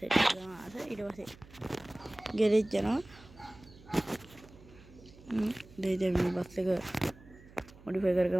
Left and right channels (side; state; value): right; noise; hum, 22 dB below the sound